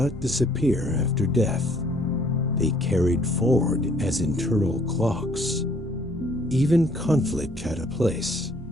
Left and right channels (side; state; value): both; normal; correlation 0.61